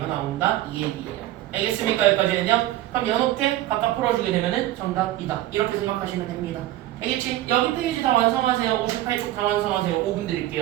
나온다. 이 얘기예요. 알겠습니까? 여기까지는요? 그럼 이렇게 각각 풀어주게 되면은 정답이다. 이렇게 생각하시면 됩니다. 알겠지? 여기 페이지 다 완성하세요. 58쪽 다 완성하세요. 5분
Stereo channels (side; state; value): left; quieter; 14.6 dB